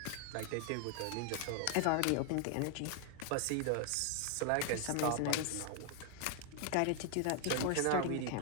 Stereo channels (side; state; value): both; different; correlation 0.00